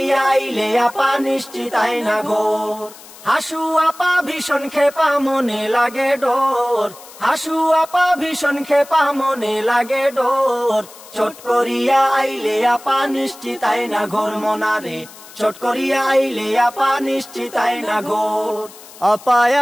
আইলে আপা নিশ্চিত আইনা ঘর। হাসু আপা ভীষণ খেপা মনে লাগে ডোর, হাসু আপা ভীষণ খেপা মনে লাগে ডোর, চট করিয়া আইলে আপা নিশ্চিত আইনা ঘর মোনারে, চট করিয়া আইলে আপা নিশ্চিত আইনা ঘর। আপা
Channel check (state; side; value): noise; left; hiss, 19 dB below the sound